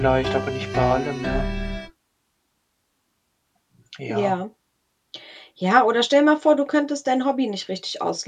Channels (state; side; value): identical; both; correlation 1.00